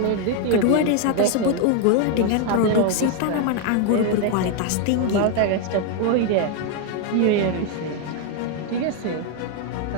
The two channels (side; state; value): both; different; correlation 0.01